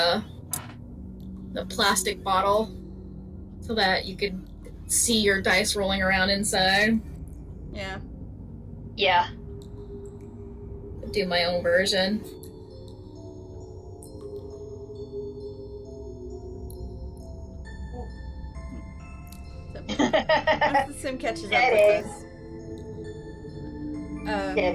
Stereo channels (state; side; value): identical; both; correlation 1.00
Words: plastic bottle so that you could see your dice rolling around inside. Yeah. Yeah. Do my own version. So, once the sim catches up Get with it. us,